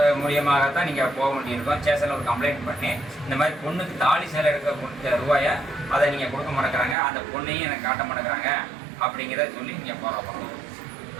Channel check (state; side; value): drops out; left; at 7.0 s